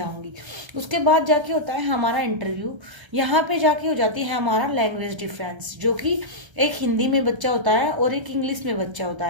उसके बाद जाके होता है हमारा इंटरव्यू। यहाँ पे जाके हो जाती है हमारा लैंग्वेज डिफरेंस, जो कि एक हिंदी में बच्चा होता है और एक इंग्लिश में बच्चा होता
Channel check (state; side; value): late; left; 1.3 ms